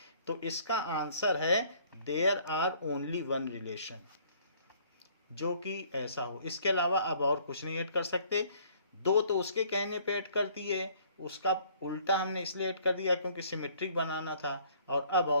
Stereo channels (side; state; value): both; inverted; correlation -0.58